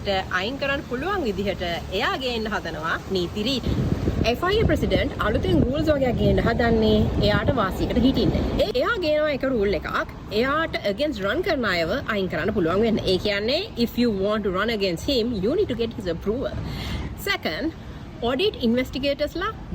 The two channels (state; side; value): identical; both; correlation 1.00